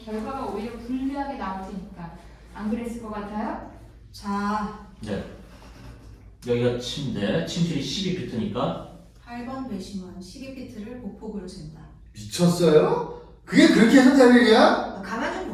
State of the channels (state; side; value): identical; both; correlation 1.00